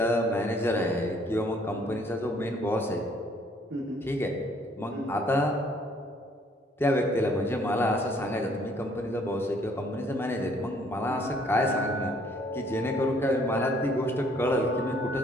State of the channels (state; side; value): normal; both; correlation 0.62